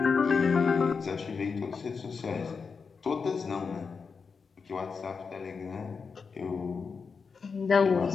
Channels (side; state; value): right; quieter; 5.3 dB